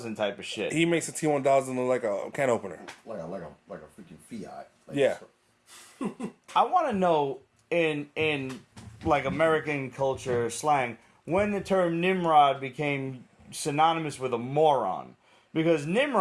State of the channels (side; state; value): both; identical; correlation 1.00